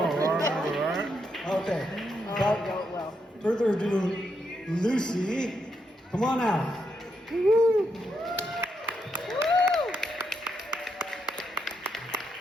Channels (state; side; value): normal; both; correlation 0.80